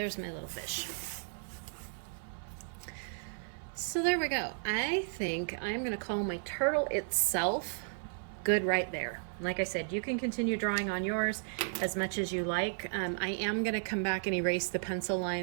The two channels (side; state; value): left; silent; 55 dB below the other